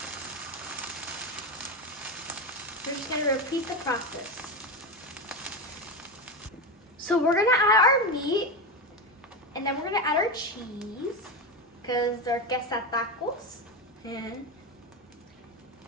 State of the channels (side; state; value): both; normal; correlation 0.16